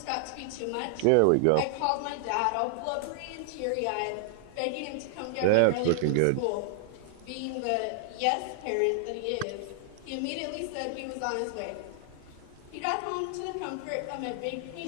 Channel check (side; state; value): both; different; correlation -0.01